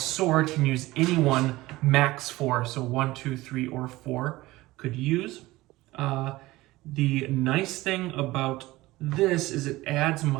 can use any one max 4. So 1, 2, 3, or 4 could use. The nice thing about this is it adds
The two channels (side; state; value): left; quieter; 18.8 dB